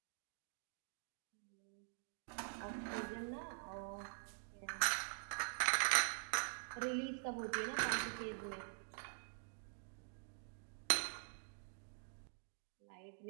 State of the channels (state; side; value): silent; left; digital silence